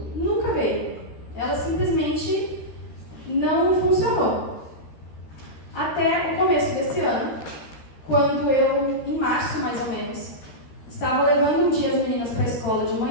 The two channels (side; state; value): right; late; 13 ms